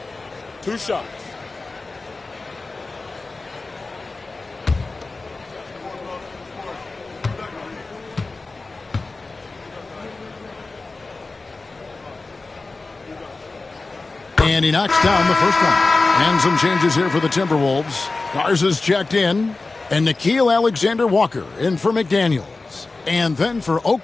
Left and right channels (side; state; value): right; quieter; 3.6 dB